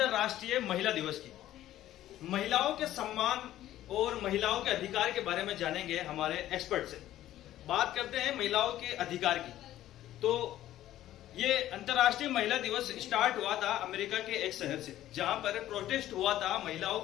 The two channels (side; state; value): right; quieter; 13.4 dB